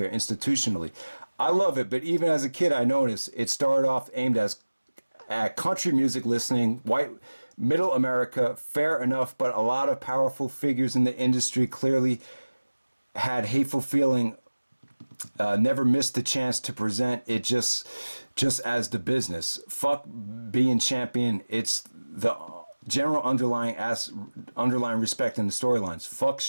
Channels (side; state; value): both; inverted; correlation -1.00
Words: institutionally. I love it, but even as a kid, I noticed it started off aimed at country music listening, white, middle America, fair enough, but a lot of powerful figures in the industry clearly had hateful feeling, never missed the chance to present it just as the business. Fuck being champion, it's the general underlying respect in the storylines. Fuck